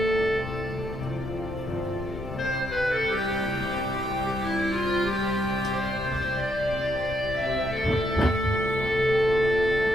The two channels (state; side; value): noise; left; rumble, 11 dB below the sound